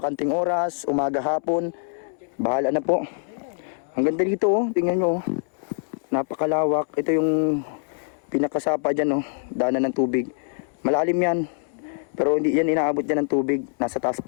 oras, umaga, hapon, bahala na po. Ang ganda dito, tingnan nyo. Napakalawak. Ito yung pinakasapa dyan, daanan ng tubig. Malalim yan. Pero hindi yan inaabot dyan ng tubig. Nasa taas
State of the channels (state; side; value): silent; right; 62 dB below the other